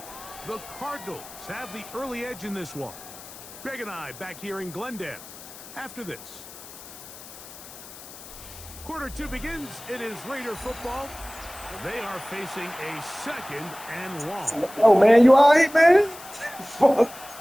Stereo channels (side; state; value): left; noise; hiss, 16 dB below the sound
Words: the Cardinals have the early edge in this one. Greg and I back here in Glendale after this. Quarter 2 begins. It is Raider football. They are facing a 2nd and long. Oh, man, you all right, man? Fuck.